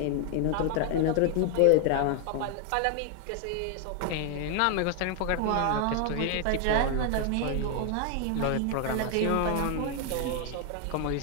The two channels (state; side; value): different; both; correlation 0.00